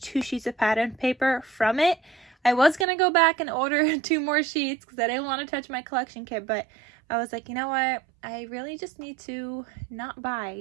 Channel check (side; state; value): left; drops out; at 2.9 s